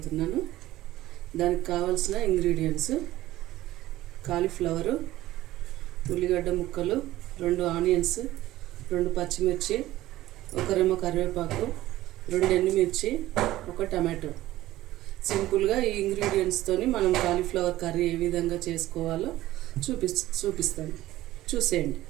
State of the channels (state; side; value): quieter; left; 15.7 dB